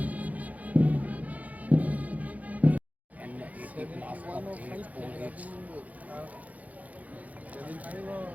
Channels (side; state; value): left; late; 0.074 ms